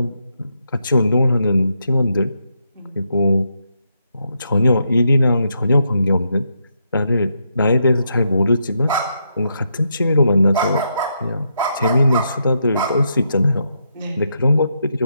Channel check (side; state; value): both; inverted; correlation -0.81